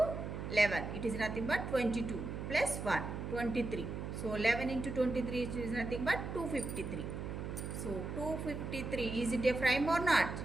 11, it is nothing but 22 plus 1, 23. So 11 into 23 is nothing but 253. So 253, is it a prime or not?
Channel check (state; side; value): noise; right; hum, 5 dB below the sound